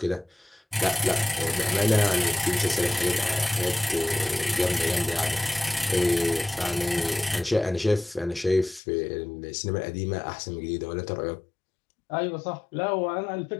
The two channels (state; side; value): drops out; right; at 8.8 s